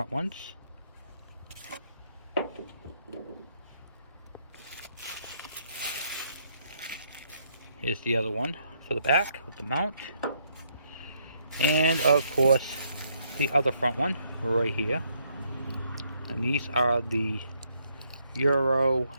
ones. Here's the other one for the back with the mount. And of course, the other front one right here. And these are the Euro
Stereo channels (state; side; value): inverted; both; correlation -0.71